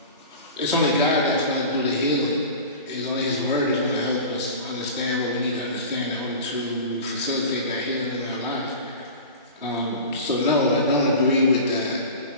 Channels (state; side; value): inverted; both; correlation -0.34